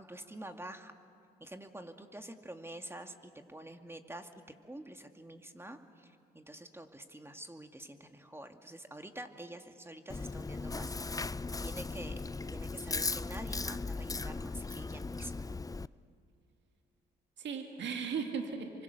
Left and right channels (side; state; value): both; normal; correlation 0.55